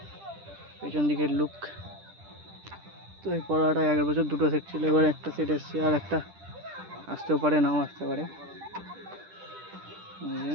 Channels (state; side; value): late; left; 10 ms